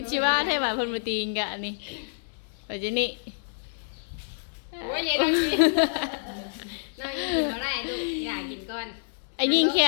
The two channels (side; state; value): right; silent; digital silence